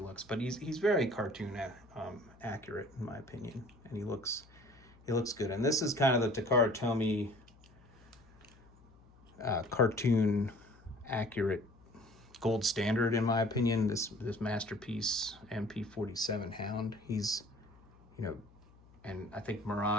but he's very cartoon accurate in my opinion, and he looks good. And this is kind of the Takara Tomy cartoon accurate gold standard in my opinion. This masterpiece MP-47 Hound, he's and I think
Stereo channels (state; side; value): noise; left; hum, 26 dB below the sound